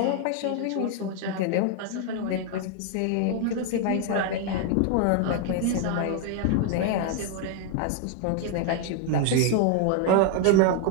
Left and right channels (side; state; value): both; different; correlation 0.00